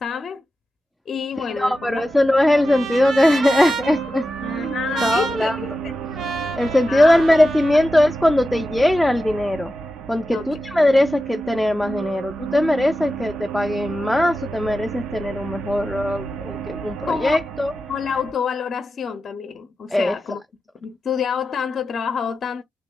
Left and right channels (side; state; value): both; normal; correlation 0.92